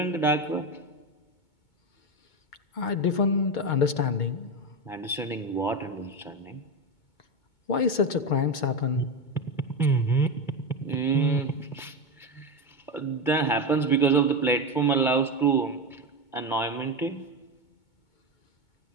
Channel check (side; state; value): right; late; 2.2 ms